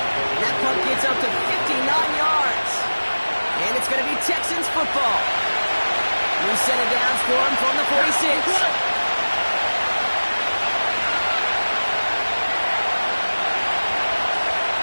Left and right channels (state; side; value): inverted; both; correlation -1.00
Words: That punt gets up to 59 yards. And it's going to be Texans football. New set of downs for him from the 46.